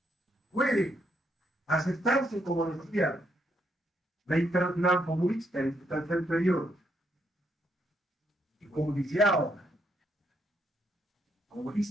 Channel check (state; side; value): normal; both; correlation 0.75